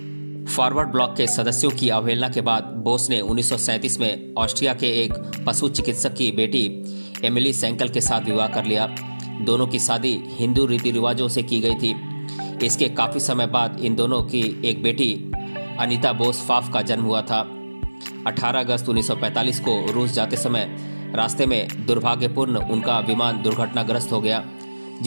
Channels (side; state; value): both; inverted; correlation -1.00